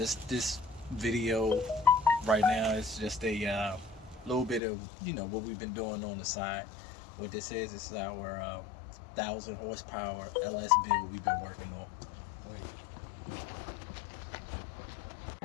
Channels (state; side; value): drops out; right; at 4.6 s